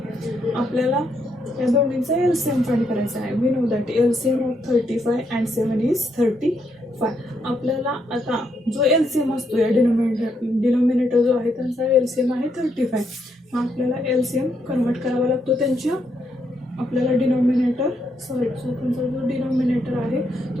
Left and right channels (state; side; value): normal; both; correlation 0.77